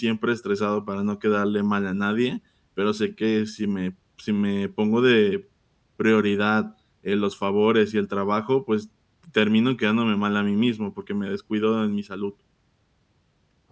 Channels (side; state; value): both; identical; correlation 1.00